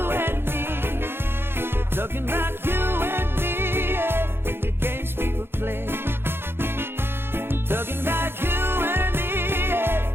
and me. Talking about you and me, yeah, and the games people play. Talking about you and me,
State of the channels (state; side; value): late; left; 0.11 ms